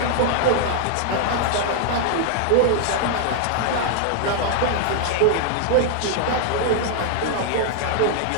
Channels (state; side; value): different; both; correlation -0.01